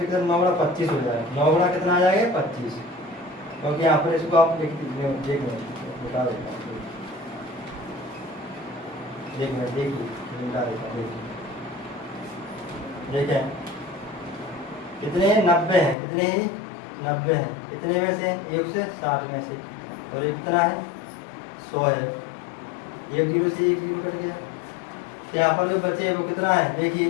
कितना? 9 गुना 25 हो जाएगा। 9 गुना कितना आ जाएगा? 25। क्योंकि यहाँ पर इसको आप देख बता देता हूँ, देखिए बता देता हूँ। देखें कितने? 90 हैं। कितने ही? 90 हैं। कितने में से? 1 से 60 में से। और ये कितना है? 100 है। 1 जीरो से 1 जीरो कट गया। तो यहाँ पर जो बचे वो कितना है? देखिए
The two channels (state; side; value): drops out; right; at 16.0 s